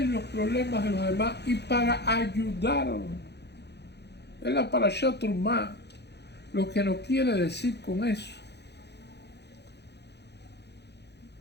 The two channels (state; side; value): late; right; 0.49 ms